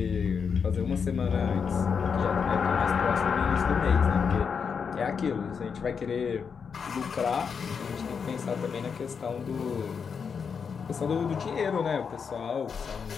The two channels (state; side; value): quieter; right; 6.2 dB